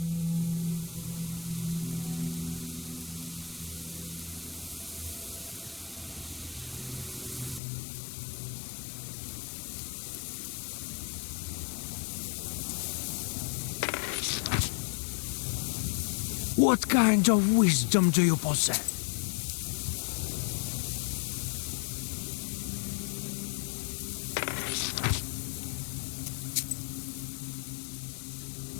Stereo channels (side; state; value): right; drops out; at 7.6 s